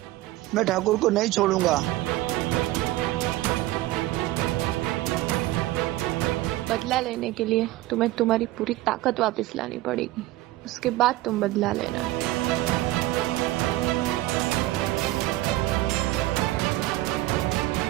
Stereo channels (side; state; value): left; quieter; 17.2 dB